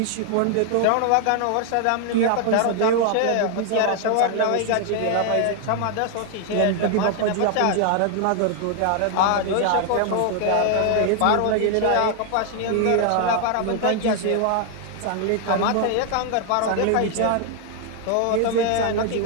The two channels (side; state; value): both; different; correlation 0.00